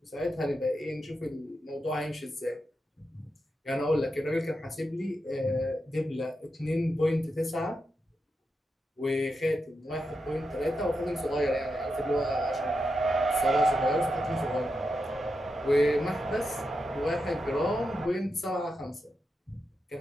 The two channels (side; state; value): both; normal; correlation 0.87